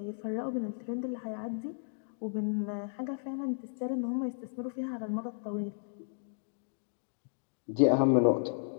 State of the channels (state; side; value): silent; right; digital silence